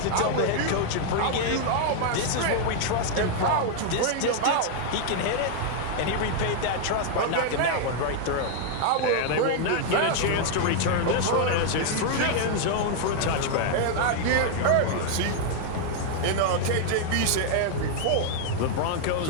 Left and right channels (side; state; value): both; different; correlation 0.00